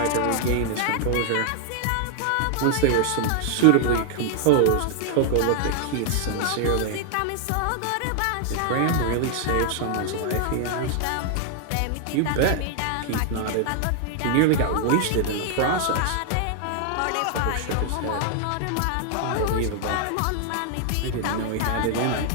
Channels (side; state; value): both; different; correlation 0.00